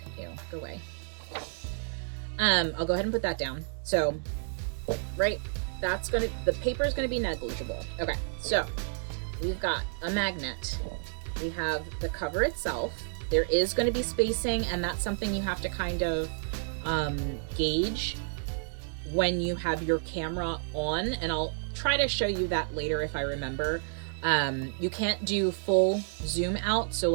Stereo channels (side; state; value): left; silent; digital silence